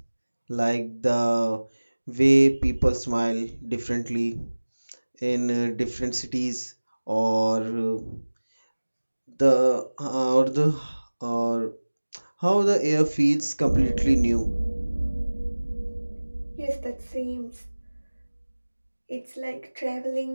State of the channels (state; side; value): inverted; both; correlation -1.00